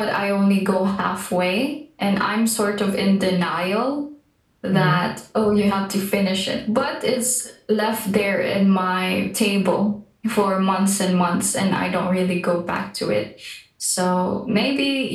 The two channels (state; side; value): identical; both; correlation 1.00